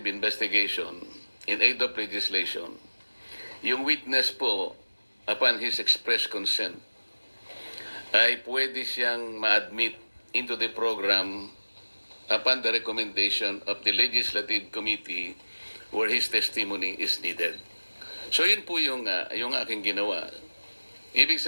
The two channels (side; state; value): both; inverted; correlation -1.00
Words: investigation in aid of legislation, yung witness po, upon his express consent, ay pwede siyang ma-admit into the program upon the recommendation of the Legislative Committee where his testimony is needed. So yun po yung aking ginawa. Ibig